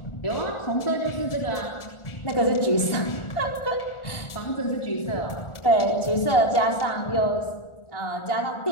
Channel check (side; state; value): right; late; 1.4 ms